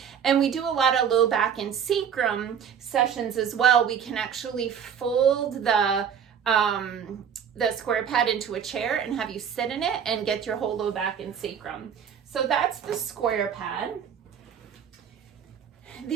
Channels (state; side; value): quieter; left; 7.8 dB